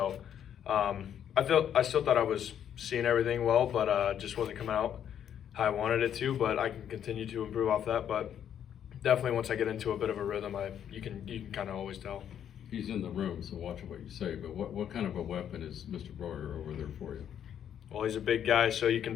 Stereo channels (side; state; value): right; quieter; 9.4 dB